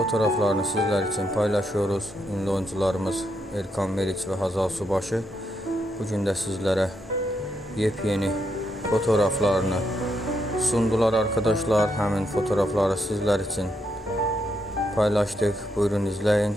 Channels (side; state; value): both; normal; correlation 0.79